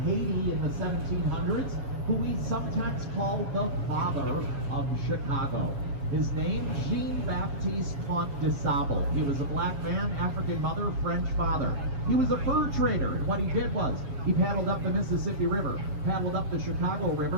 in the 1700s who we sometimes call the father of Chicago. His name, Jean-Baptiste Comte de Sable. He was a black man, African mother, French father. He was a fur trader, and what he did was he paddled up the Mississippi River, paddled up the Chicago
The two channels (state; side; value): late; left; 7.3 ms